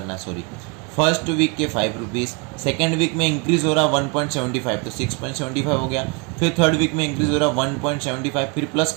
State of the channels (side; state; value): left; quieter; 32.4 dB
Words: सॉरी, फर्स्ट वीक के 5 रुपीज़, सेकेंड वीक में इंक्रीज हो रहा 1.75, तो 6.75 हो गया। फिर थर्ड वीक में इंक्रीज हो रहा 1.75, फिर प्लस